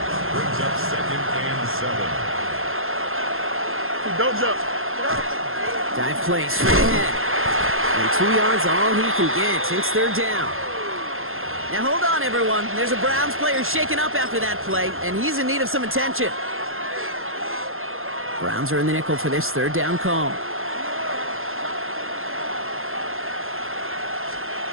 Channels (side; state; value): left; late; 0.61 ms